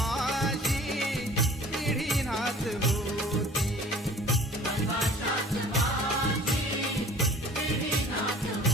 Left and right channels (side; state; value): both; normal; correlation 0.48